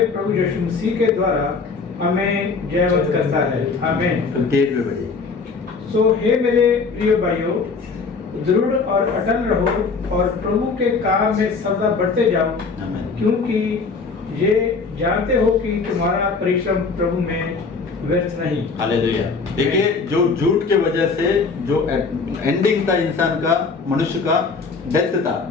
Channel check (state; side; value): quieter; right; 4.6 dB